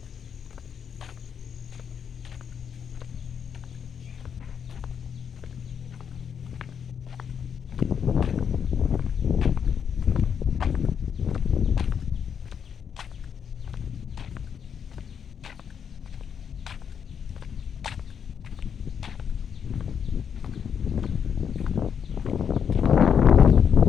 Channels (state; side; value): quieter; right; 7.5 dB